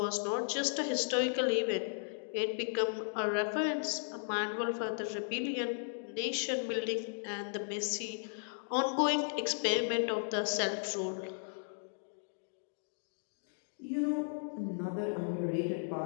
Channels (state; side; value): silent; right; digital silence